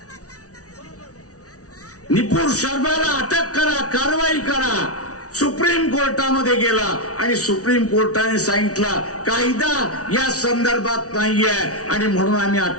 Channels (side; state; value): right; late; 0.67 ms